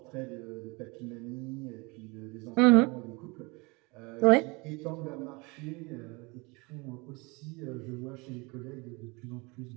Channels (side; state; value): left; quieter; 27.1 dB